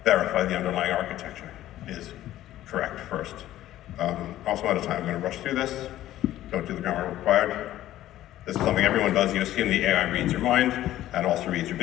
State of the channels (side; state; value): right; quieter; 13.8 dB